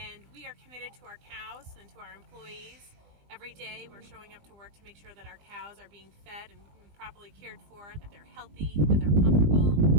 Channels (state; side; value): late; left; 20 ms